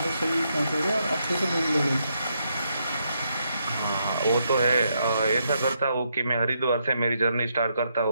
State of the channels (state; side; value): inverted; both; correlation -0.78